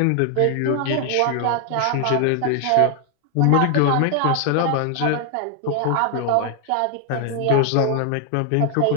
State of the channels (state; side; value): different; both; correlation 0.00